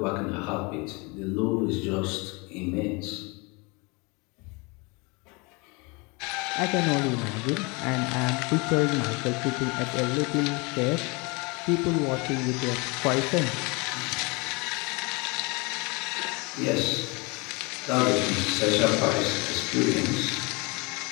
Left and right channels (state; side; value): quieter; right; 28.3 dB